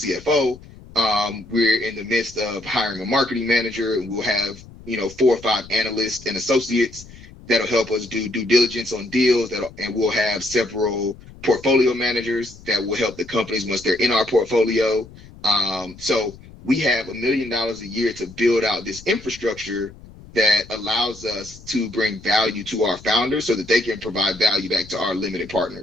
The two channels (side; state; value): left; noise; rumble, 20 dB below the sound